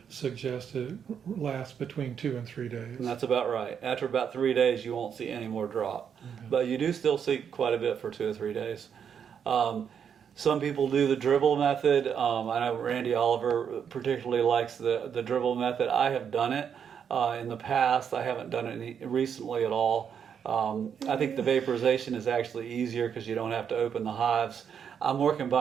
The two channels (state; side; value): quieter; left; 7.7 dB